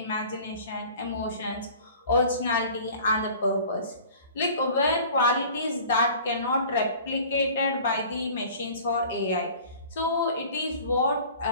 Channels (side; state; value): both; inverted; correlation -0.46